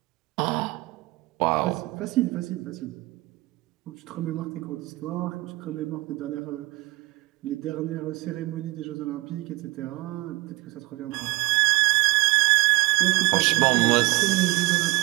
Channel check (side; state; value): left; quieter; 21.0 dB